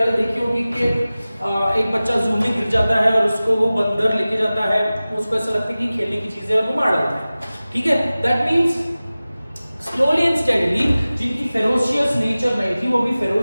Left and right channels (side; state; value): both; inverted; correlation -0.97